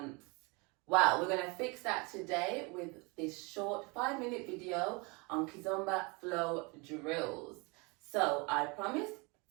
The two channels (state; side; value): quieter; left; 28.6 dB